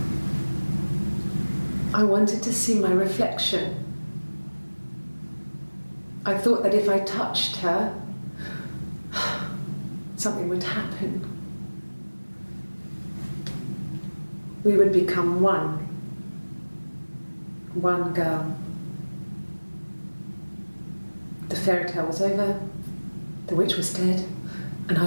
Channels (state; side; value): inverted; both; correlation -1.00